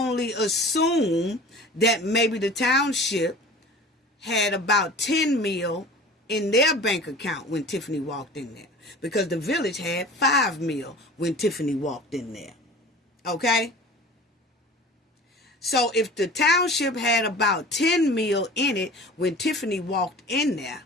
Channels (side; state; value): both; normal; correlation 0.41